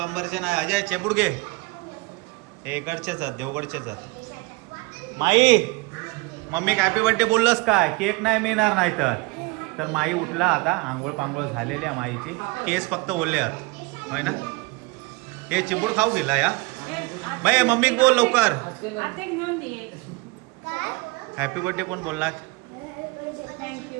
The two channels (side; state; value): left; quieter; 24.7 dB